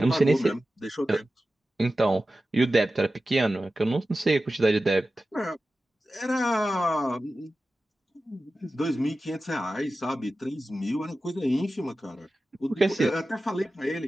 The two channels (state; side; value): normal; both; correlation 0.94